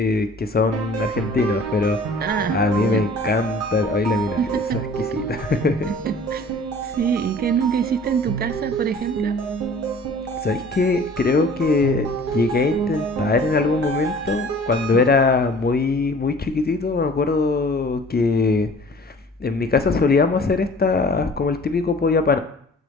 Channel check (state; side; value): normal; both; correlation 0.48